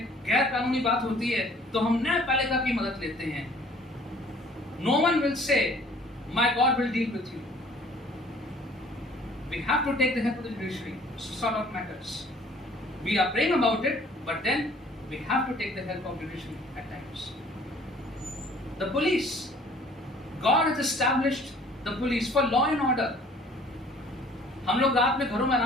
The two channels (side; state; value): both; normal; correlation 0.54